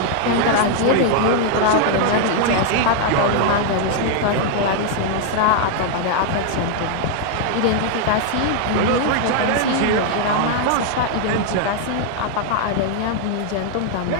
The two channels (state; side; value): different; both; correlation 0.00